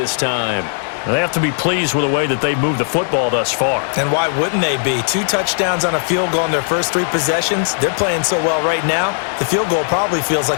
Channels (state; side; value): silent; right; digital silence